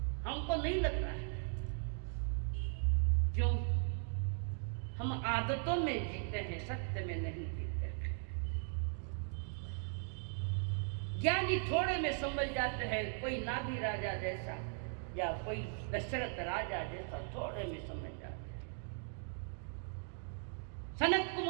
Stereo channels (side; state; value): left; silent; 52 dB below the other